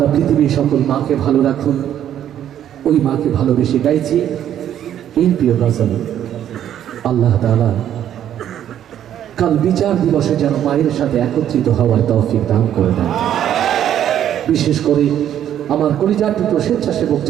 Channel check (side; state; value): left; quieter; 10.6 dB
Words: পৃথিবীর সকল মাকে ভালো রাখুন। ওই মাকে ভালোবেসে গাইছি এই প্রিয় গজল। আল্লাহ তাআলা কাল বিচার দিবসে যেন মায়ের সাথে একত্রিত হওয়ার তৌফিক দান করে দেন। বিশেষ করে আমার কলিজার টুকরো স্বেচ্ছাসেবক